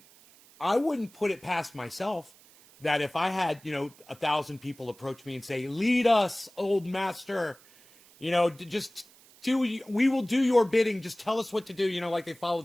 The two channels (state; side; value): noise; right; hiss, 26 dB below the sound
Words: I wouldn't put it past myself that if I had, 1,000 people approach me and say, lead us, old master, just we will do your bidding. Just tell us what to do. Like they